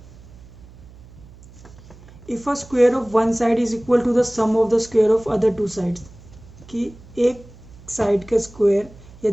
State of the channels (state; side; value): noise; right; hum, 21 dB below the sound